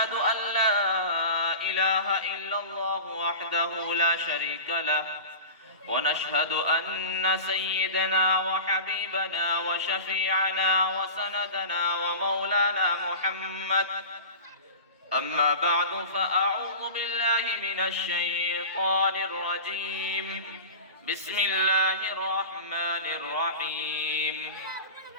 أن لا إله إلا الله وحده لا شريك له ونشهد أن سيدنا وحبيبنا وشفيعنا وسندنا ومولانا محمد. أما بعد فأعوذ بالله من الشيطان الرجيم. بسم الله الرحمن الرحيم.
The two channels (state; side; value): inverted; both; correlation -0.33